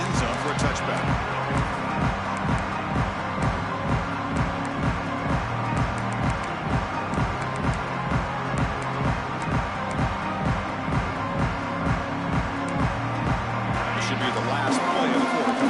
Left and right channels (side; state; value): both; identical; correlation 1.00